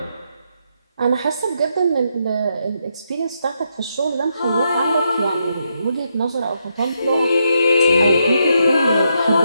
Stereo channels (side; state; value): both; inverted; correlation -0.80